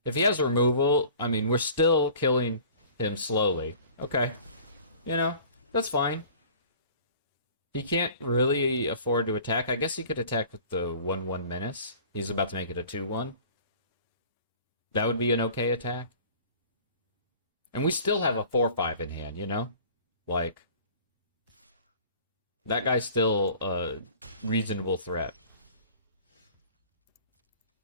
If he has removal, I mean, we're still killing him slowly. Okay. You know, that's fine. He can't really afford to attack. I guess he could attack with the 1-1 menace. He's about to make it a 2-1. That would be an okay attack. And we still have a 4-5 in hand, you know? Like, that guy's still a reasonable threat.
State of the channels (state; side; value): inverted; both; correlation -0.47